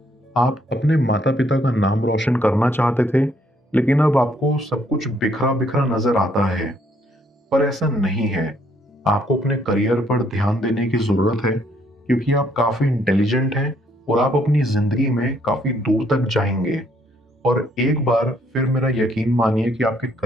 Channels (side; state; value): both; normal; correlation 0.68